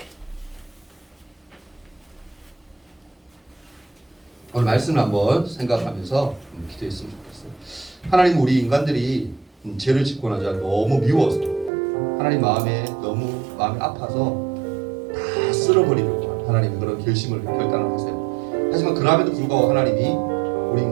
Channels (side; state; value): left; drops out; at 11.7 s